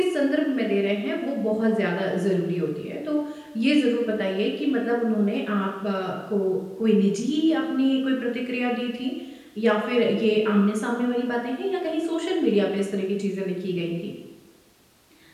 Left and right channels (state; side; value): identical; both; correlation 1.00